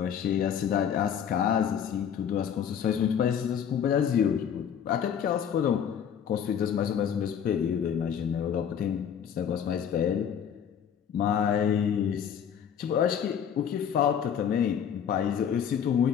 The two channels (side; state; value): right; quieter; 8.3 dB